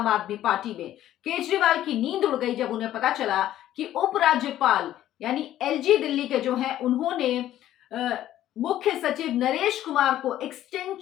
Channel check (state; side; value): quieter; right; 12.8 dB